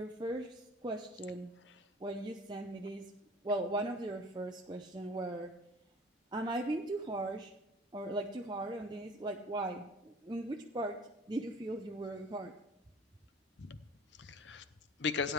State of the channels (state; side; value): normal; both; correlation 0.45